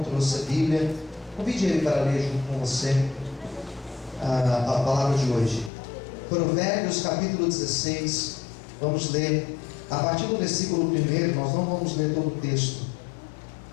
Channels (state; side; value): drops out; right; at 5.7 s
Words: trouxe a Bíblia, convide ele para ler junto com você a palavra de hoje. Provérbios capítulo 16, vamos ler a partir do versículo 1, nós não vamos ler todo o texto.